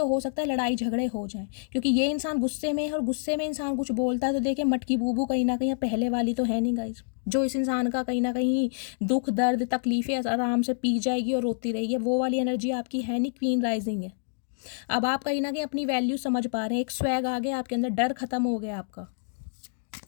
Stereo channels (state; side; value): silent; right; digital silence